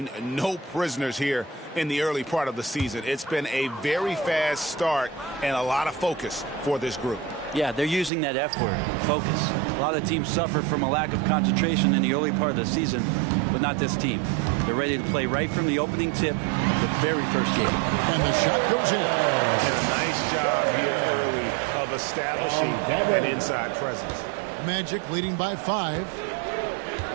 no prisoners here in the early part of the season. It's been a very fast start and a lot of focus for this group. Yeah, they're using that F word, focus. A lot of teams suffer from a lack of concentration in the early part of the season, but not this team. They're ready to play right from the opening tip of the very first game. And the shot goes in. And a nice job here early of establishing an inside presence. Magic leading by 5.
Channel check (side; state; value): left; drops out; at 8.1 s